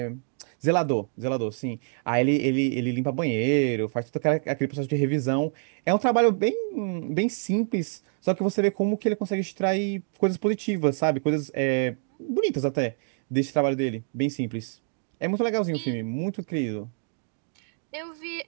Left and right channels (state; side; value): silent; left; digital silence